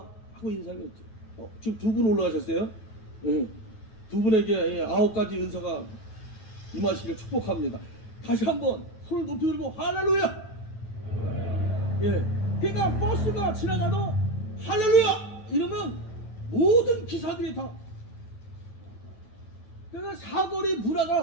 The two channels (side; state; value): right; late; 9.3 ms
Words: 하고 인사했죠. 지금 2분 올라가셨어요? 예, 2분에게 예, 9가지 은사가 임하시길 축복합니다. 다시 한번 손을 높이 들고 할렐루야. 예, 그러니까 버스가 지나가도 할렐루야 이러면 모든 기사들이 다 그러니까 사거리